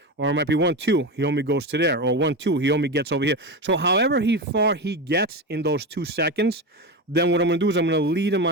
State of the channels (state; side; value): normal; both; correlation 0.20